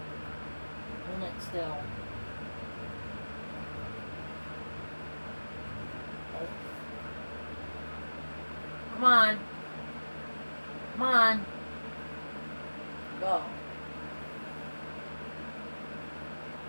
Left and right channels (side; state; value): both; inverted; correlation -1.00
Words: Hold it still. Oh. Come on. Come on. Go.